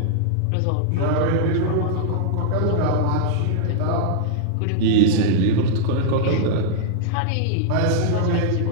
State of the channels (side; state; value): both; different; correlation -0.01